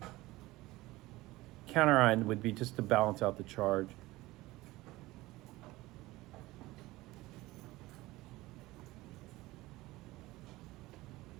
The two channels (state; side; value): quieter; left; 19.1 dB